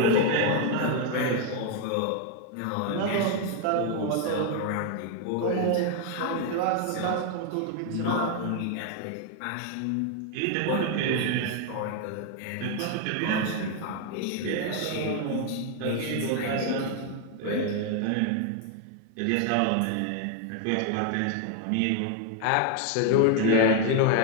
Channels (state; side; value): different; both; correlation 0.01